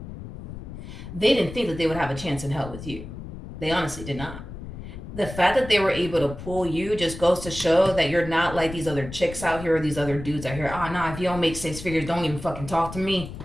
they didn't think that they would have a chance in hell with you. They honestly did not. The fact that they were able to pull you just goes to show that you're not like these other chicks out here or these other dudes out here. Oh, nah, if you don't make six figures, don't even fucking talk to me.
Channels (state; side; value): noise; left; rumble, 11 dB below the sound